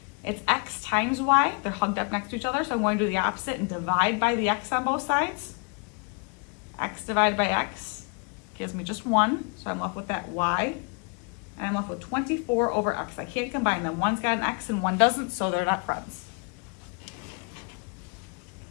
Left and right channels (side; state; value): right; quieter; 36.8 dB